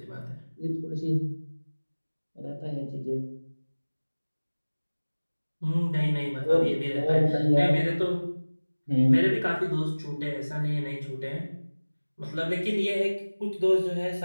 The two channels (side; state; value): both; inverted; correlation -1.00